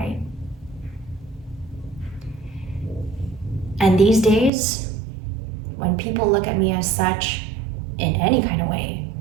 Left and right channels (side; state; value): left; drops out; at 4.5 s